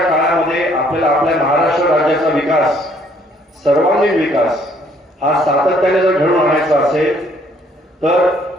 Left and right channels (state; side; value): normal; both; correlation 0.63